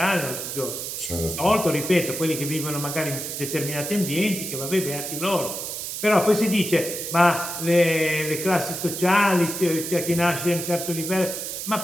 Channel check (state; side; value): noise; right; hiss, 6 dB below the sound